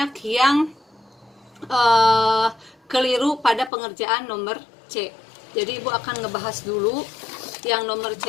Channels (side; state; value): right; drops out; at 3.7 s